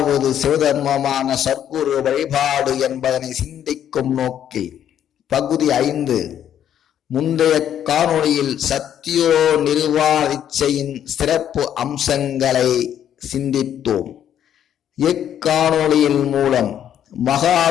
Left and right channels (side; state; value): right; quieter; 10.0 dB